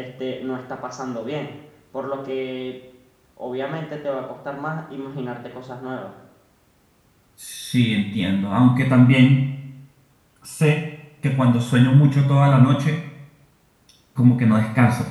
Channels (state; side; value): identical; both; correlation 1.00